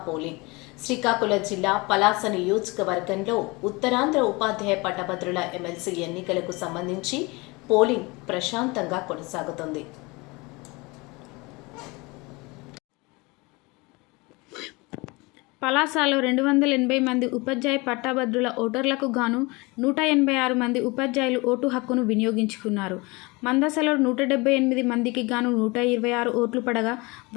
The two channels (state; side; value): quieter; right; 25.4 dB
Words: పోలింగ్. శ్రీకాకుళం జిల్లా పలాస నియోజకవర్గంలో ఉత్తరాంధ్ర ఉపాధ్యాయ పట్టభద్రుల ఎమ్మెల్సీ ఎన్నికలకు సంబంధించి పోలింగ్ ప్రశాంతంగా కొనసాగుతుంది. పలాసలో 280 మంది ఉపాధ్యాయ పట్టభద్రుల ఓటర్లకు గాను 186 మంది ఉపాధ్యాయులు ఓటు హక్కును వినియోగించుకున్నారు. మందసలో 178 మందికి గాను 126 ఓట్లు పడగా,